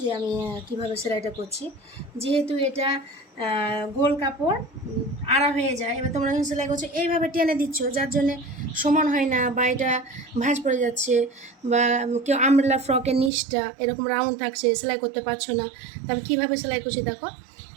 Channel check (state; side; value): drops out; left; at 13.3 s